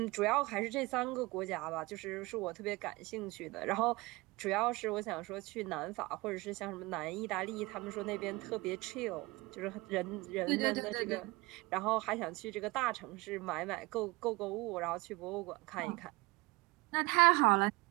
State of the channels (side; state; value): left; quieter; 23.0 dB